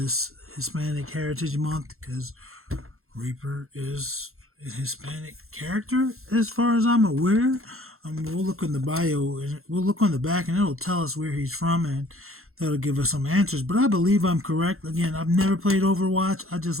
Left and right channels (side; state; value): left; late; 0.62 ms